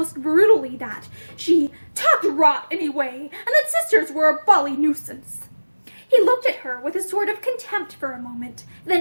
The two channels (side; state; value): both; inverted; correlation -1.00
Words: brutally that she talked rot anyway, and that sisters were a bally nuisance. He looked at her with a sort of contempt for a moment,